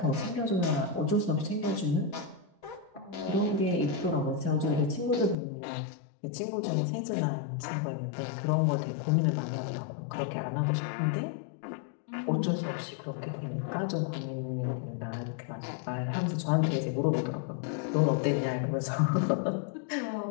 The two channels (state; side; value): drops out; right; at 5.4 s